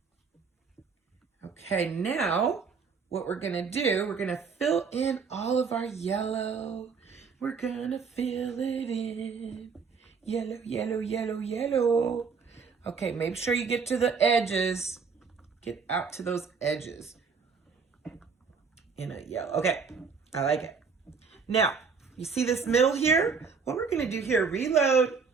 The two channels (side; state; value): left; quieter; 5.4 dB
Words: Okay, now what we're gonna do, we're gonna fill in all of our yellow. We're gonna fill it in. Yellow, yellow, yellow, yellow. Okay, make sure you get to the edges. Get out to those edges in a yellow. Okay, I like it. Now, you see this middle here? What we're gonna do here, reload,